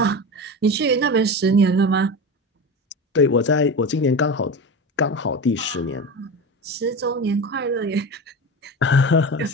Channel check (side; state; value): both; normal; correlation 0.26